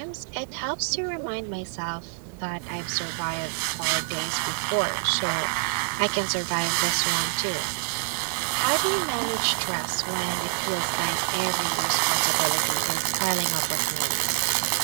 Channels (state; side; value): silent; left; digital silence